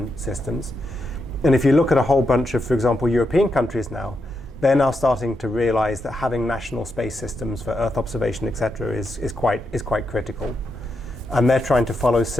systems. And if you look at a whole bunch of, for example, European countries now, they're now starting to realize that having national space systems for Earth observation, etc., is quite critical. And they're trying to follow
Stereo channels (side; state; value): both; normal; correlation 0.84